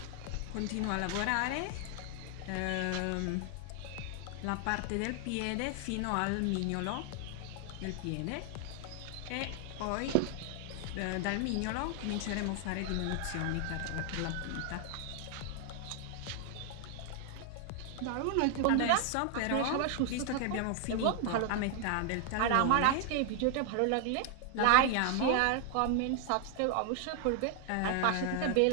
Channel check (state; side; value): different; both; correlation 0.00